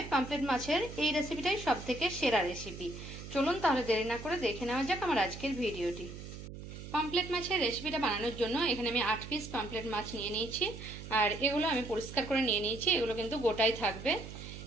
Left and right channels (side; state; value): right; noise; hum, 11 dB below the sound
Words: পামফ্লেট মাছের এই রেসিপিটাই সবথেকে সেরা রেসিপি। চলুন তাহলে দেরি না করে দেখে নেওয়া যাক আমার আজকের ভিডিওটি। পামফ্লেট মাছের রেসিপিটা বানানোর জন্য এখানে আমি 8 পিস পামফ্লেট মাছ নিয়ে নিয়েছি, আর এগুলো আমি পরিষ্কার করে নিয়ে নিয়েছি। এগুলো কিন্তু গোটাই থাকবে।